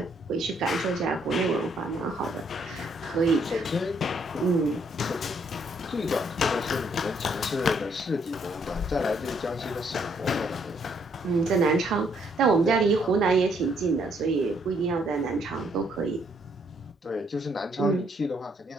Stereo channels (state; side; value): normal; both; correlation 0.70